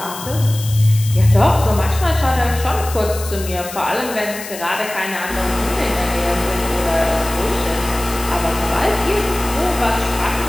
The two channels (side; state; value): left; noise; hiss, 12 dB below the sound